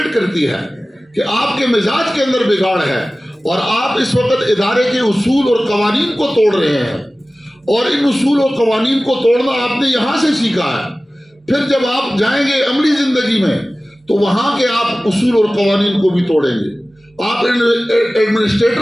کرتی ہے کہ آپ کے مزاج کے اندر بگاڑ ہے اور آپ اس وقت ادارے کے اصول اور قوانین کو توڑ رہے ہیں. اور ان اصول اور قوانین کو توڑنا آپ نے یہاں سے سیکھا ہے. پھر جب آپ جائیں گے عملی زندگی میں تو وہاں کے آپ اصول اور قوانین کو بھی توڑیں گے. آپ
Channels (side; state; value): both; normal; correlation 0.97